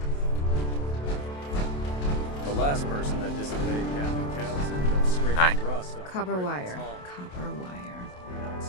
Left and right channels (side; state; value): right; late; 27 ms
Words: The last person that disobeyed Captain Kells ended up scraping rust off Copper the wire. hull. Copper wire.